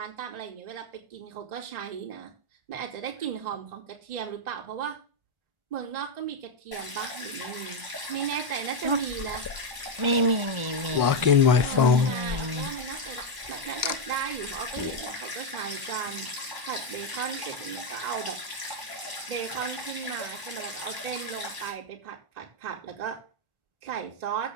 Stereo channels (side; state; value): left; late; 1.1 ms